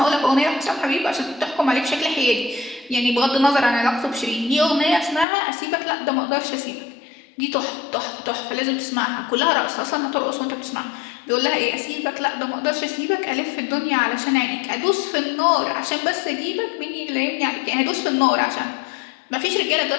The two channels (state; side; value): drops out; right; at 5.2 s